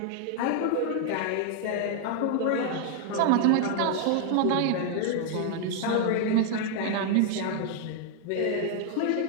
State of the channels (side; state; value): both; different; correlation 0.00